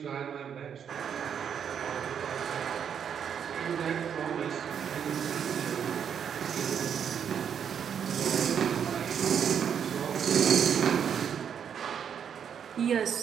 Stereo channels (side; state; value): left; quieter; 8.0 dB